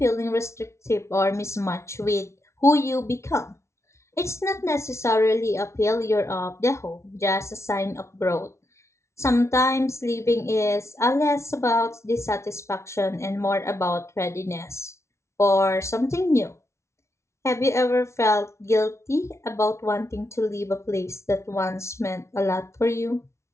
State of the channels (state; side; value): late; right; 0.13 ms